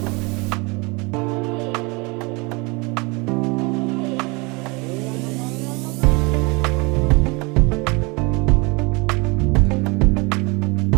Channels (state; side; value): quieter; left; 27.9 dB